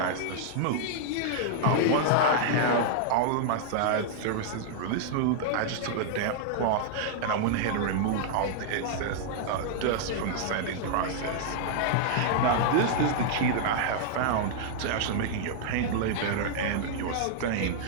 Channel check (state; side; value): different; both; correlation -0.01